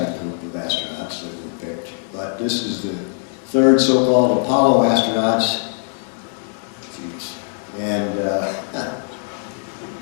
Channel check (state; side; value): silent; right; 61 dB below the other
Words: group of astronauts that were picked. But this is the third so-called Apollo astronauts. Jeez. And